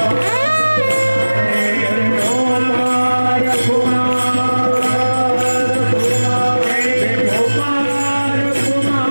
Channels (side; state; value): both; inverted; correlation -1.00